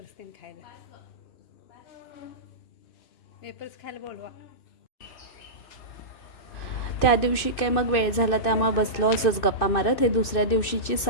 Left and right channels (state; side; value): late; right; 2.6 ms